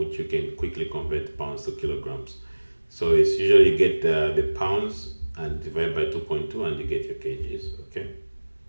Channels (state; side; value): inverted; both; correlation -1.00